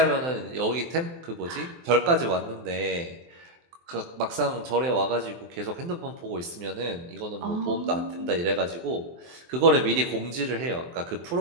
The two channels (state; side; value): late; left; 23 ms